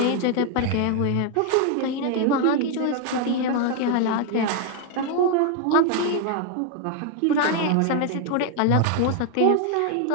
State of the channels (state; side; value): different; both; correlation 0.01